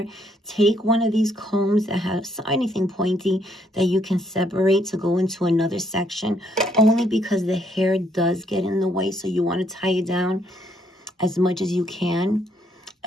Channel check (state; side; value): normal; both; correlation 0.71